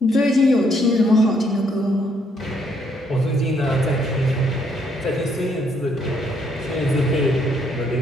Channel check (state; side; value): normal; both; correlation 0.71